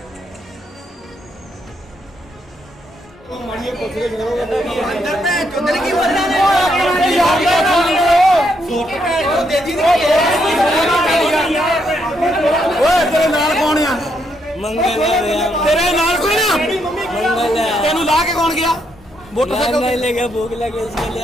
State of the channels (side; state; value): both; normal; correlation 0.76